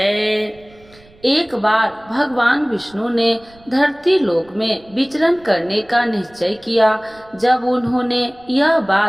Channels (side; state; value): right; noise; rumble, 27 dB below the sound